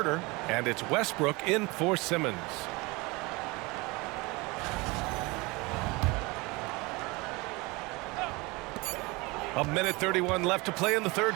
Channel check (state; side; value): quieter; left; 24.7 dB